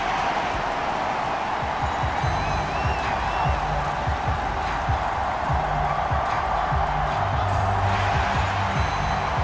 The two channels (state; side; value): identical; both; correlation 1.00